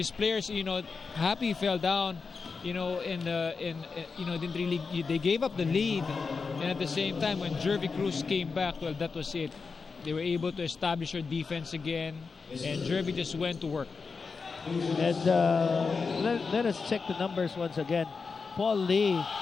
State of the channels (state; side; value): quieter; right; 4.8 dB